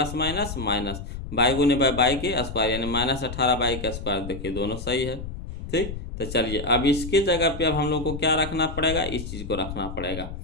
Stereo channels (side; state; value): left; noise; rumble, 8 dB below the sound